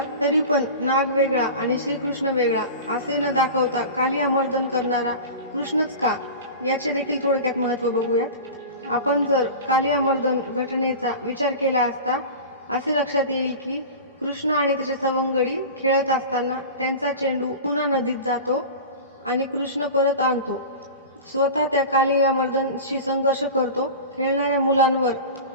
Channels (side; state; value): both; inverted; correlation -0.32